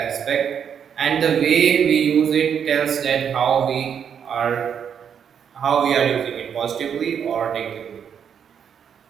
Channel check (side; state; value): left; quieter; 7.9 dB